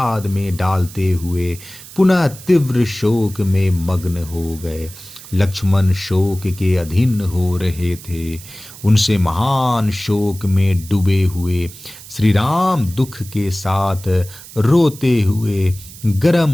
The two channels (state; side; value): noise; right; hiss, 17 dB below the sound